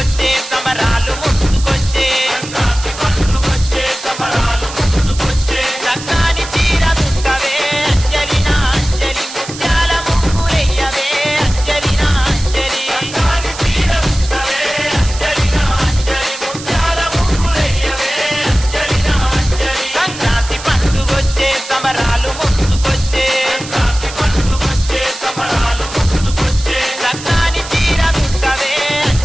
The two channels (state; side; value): noise; right; hiss, 12 dB below the sound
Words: సమరాలు ముందుకొచ్చే Sankranti పండుగొచ్చే సమరాలు ముందుకొచ్చే చక్కని చీర దుట్టవే అంజలినా అంజలి ముత్యాల ముగ్గులెయ్యవే అంజలినా అంజలి చక్కని చీర దుట్టవే అంజలినా అంజలి ముత్యాల ముగ్గులెయ్యవే అంజలినా అంజలి సంక్రాంతి పండుగొచ్చే సమరాలు ముందుకొచ్చే సంక్రాంతి పండుగొచ్చే సమరాలు ముందుకొచ్చే చక్కని చీర దుట్టవే